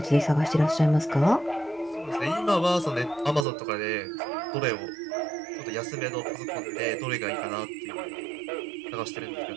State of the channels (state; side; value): drops out; left; at 3.5 s